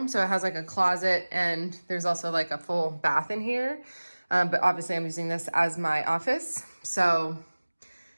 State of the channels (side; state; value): both; inverted; correlation -1.00